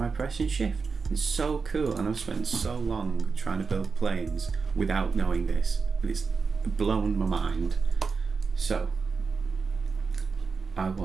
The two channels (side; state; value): left; quieter; 4.9 dB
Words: pressing shift. It's so cool, and I've spent so long trying to build planes without knowing this. but it's blown my mind. So I